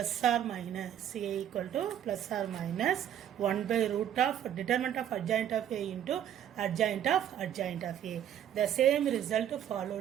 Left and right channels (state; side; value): quieter; left; 10.2 dB